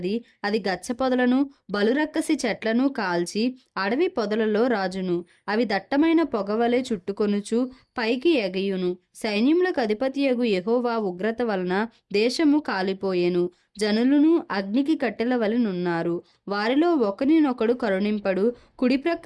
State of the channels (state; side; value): identical; both; correlation 1.00